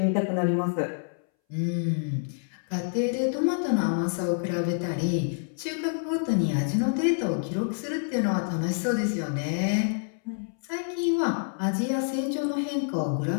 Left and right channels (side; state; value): right; silent; 60 dB below the other